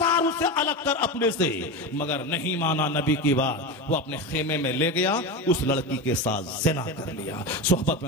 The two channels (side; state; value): both; normal; correlation 0.21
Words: उसे अलग कर अपने से, मगर नहीं माना नबी की बात। वो अपने खेमे में ले गया, उस लड़की के साथ ज़िना कर लिया, सोहबत